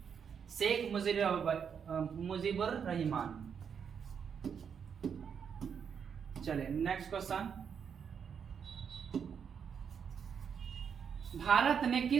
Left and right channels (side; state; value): left; quieter; 7.1 dB